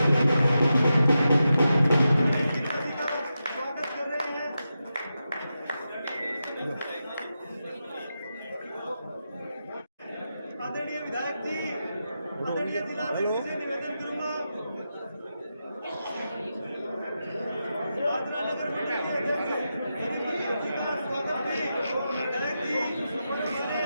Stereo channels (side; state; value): both; inverted; correlation -0.89